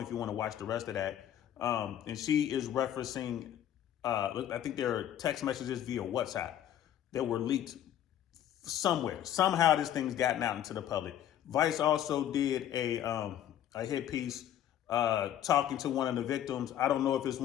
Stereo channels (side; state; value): right; quieter; 10.9 dB